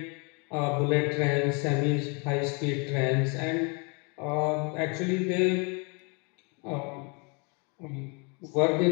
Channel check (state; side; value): quieter; right; 32.9 dB